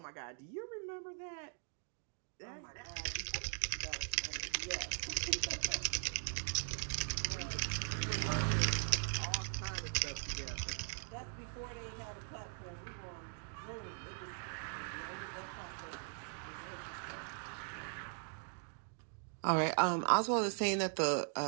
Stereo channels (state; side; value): silent; left; 51 dB below the other